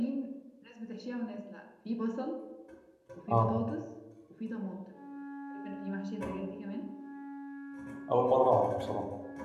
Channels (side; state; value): both; identical; correlation 1.00